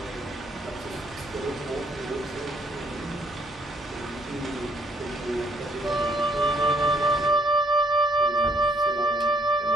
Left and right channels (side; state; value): both; normal; correlation 0.67